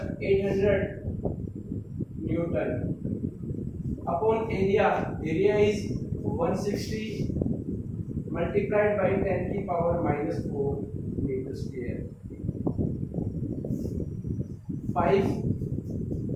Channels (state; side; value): identical; both; correlation 1.00